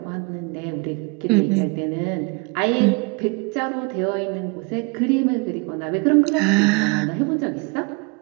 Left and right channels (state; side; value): quieter; left; 28.7 dB